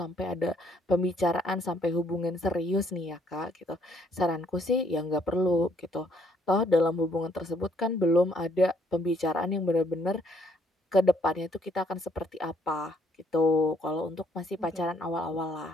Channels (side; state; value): both; normal; correlation 0.68